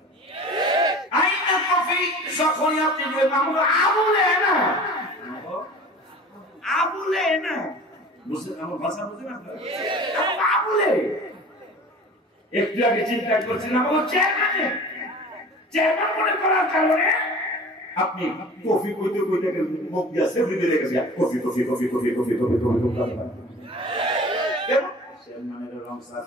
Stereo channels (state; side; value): normal; both; correlation 0.41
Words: আইনা কফি যখন আপনি আবুলে না বুঝছেন আমার ভাষা বুঝেন আপনারা আবুলে একটু আগে চিন্তা করছিলাম আমার চেয়ারম্যান মনে করার কারণে আপনি কফি কইতে কইতে মুখ দিয়ে সেভরি দিয়ে গেছে coffee coffee coffee coffee coffee coffee coffee coffee চেয়ারম্যানের রংসা